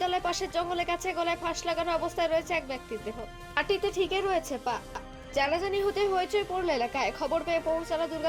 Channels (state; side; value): identical; both; correlation 1.00